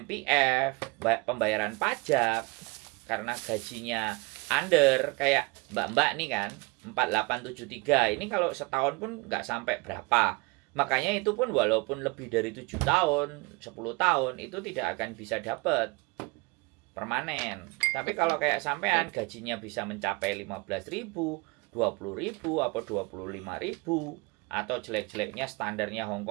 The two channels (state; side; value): quieter; left; 27.0 dB